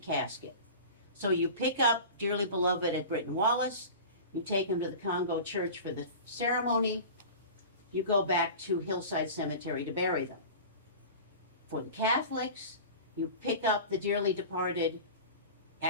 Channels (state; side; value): inverted; both; correlation -0.35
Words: So you pick up dearly beloved at Britton Wallace, you take him to the Congo Church for the ceremony, you go back to Hillside Cemetery to bury them. For the Catholics, you pick up the dearly departed